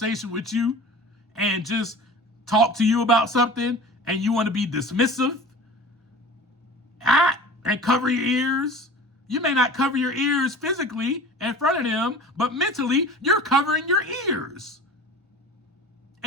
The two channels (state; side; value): normal; both; correlation 0.39